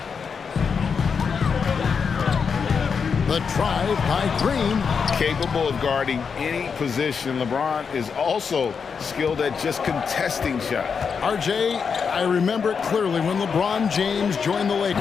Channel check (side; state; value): right; quieter; 6.0 dB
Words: The drive by Green. Capable of guarding any position. LeBron is also skilled at just contesting shots. RJ, I remember it clearly when LeBron James joined the